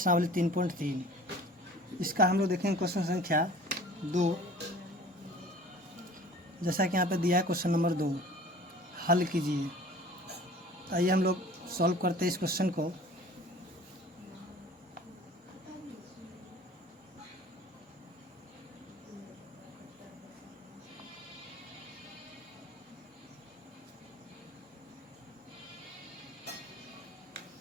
3.3। इसका हम लोग देखेंगे क्वेश्चन संख्या 2। जैसा कि यहाँ पे दिया है क्वेश्चन नंबर 2, हल कीजिए। तो आइए हम लोग सॉल्व करते हैं इस क्वेश्चन को।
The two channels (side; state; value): both; normal; correlation 0.45